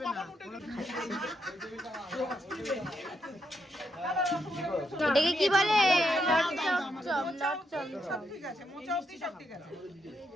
এটাকে কি বলে? লট চমচম।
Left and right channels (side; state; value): both; normal; correlation 0.79